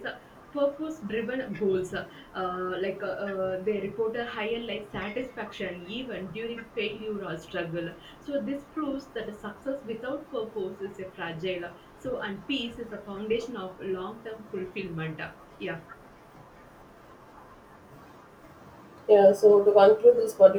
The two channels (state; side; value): identical; both; correlation 1.00